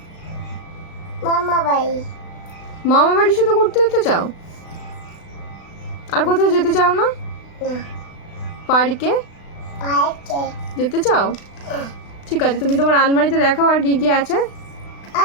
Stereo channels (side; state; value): right; late; 36 ms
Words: মামা বাড়ি। মামা বাড়ি শুধু ঘুরতে যেতে চাও? আর কোথাও যেতে চাও না? না, পার্কে পাইকে। যেতে চাও? ঠিক আছে, তুমি তোমার আলমারিতে দেখাও আর কি কি আছে।